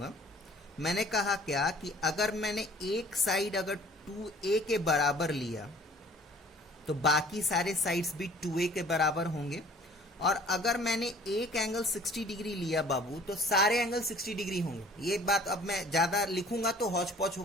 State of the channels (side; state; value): both; normal; correlation 0.51